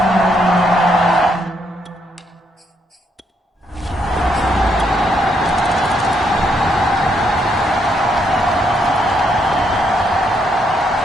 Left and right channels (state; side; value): normal; both; correlation 0.75